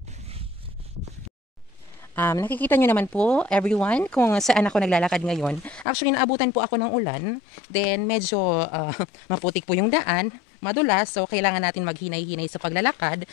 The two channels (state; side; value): drops out; right; at 5.9 s